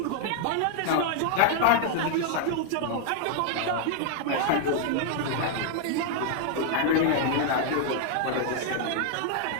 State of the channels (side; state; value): both; different; correlation 0.00